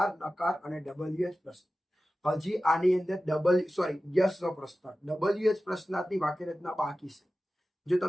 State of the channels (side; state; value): both; normal; correlation 0.95